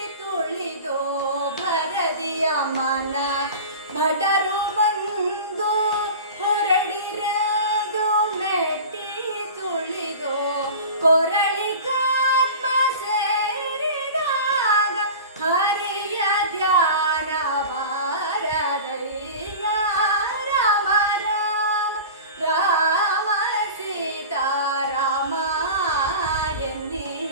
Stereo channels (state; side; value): inverted; both; correlation -0.35